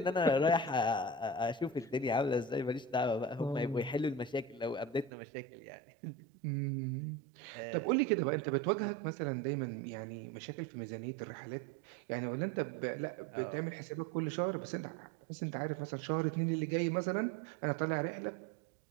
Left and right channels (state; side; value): drops out; left; at 5.1 s